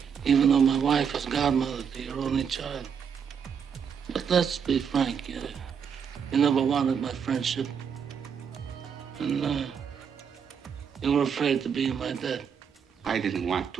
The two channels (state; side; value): quieter; left; 7.2 dB